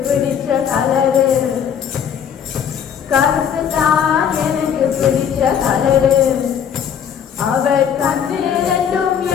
பிடிச்ச கலரு, கருப்புதான் எனக்கு பிடிச்ச கலரு. அவர் கண்ணு ரெண்டும்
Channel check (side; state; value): right; quieter; 8.2 dB